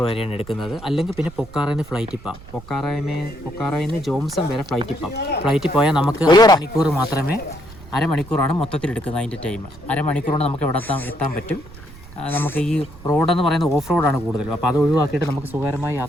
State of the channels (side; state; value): right; noise; rumble, 18 dB below the sound